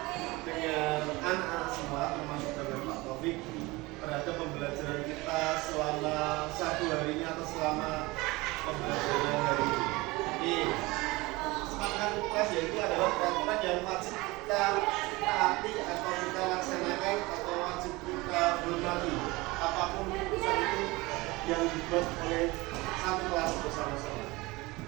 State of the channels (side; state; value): left; quieter; 22.3 dB